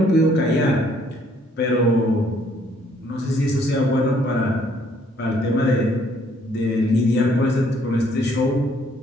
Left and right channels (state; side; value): normal; both; correlation 0.65